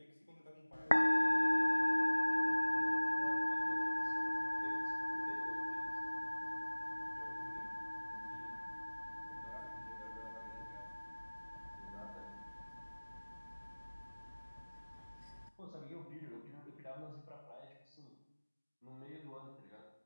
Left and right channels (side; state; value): both; inverted; correlation -1.00